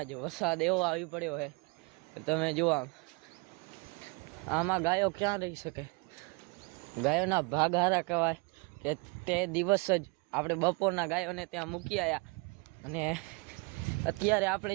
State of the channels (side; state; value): left; quieter; 29.9 dB